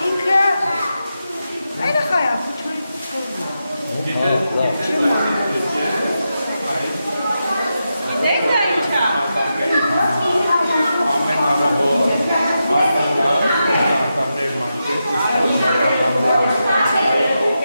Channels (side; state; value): both; inverted; correlation -0.88